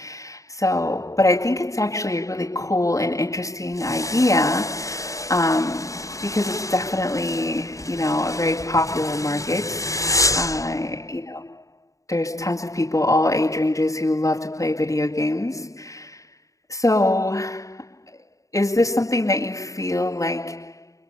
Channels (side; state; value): right; late; 0.16 ms